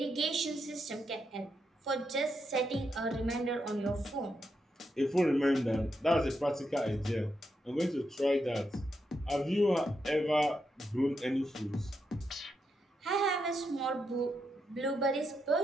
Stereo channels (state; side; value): normal; both; correlation 0.83